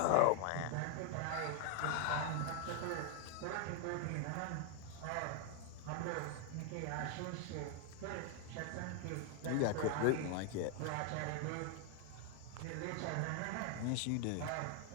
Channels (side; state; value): both; different; correlation 0.00